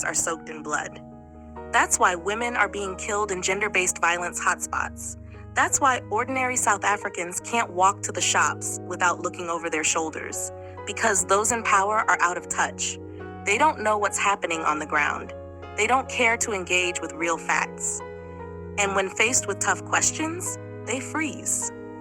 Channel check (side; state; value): both; identical; correlation 1.00